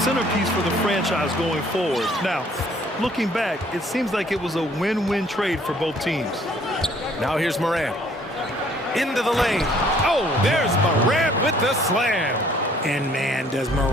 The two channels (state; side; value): normal; both; correlation 0.60